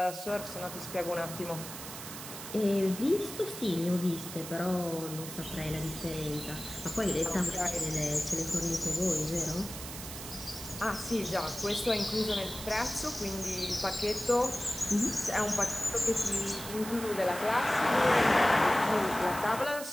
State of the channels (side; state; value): right; noise; hiss, 10 dB below the sound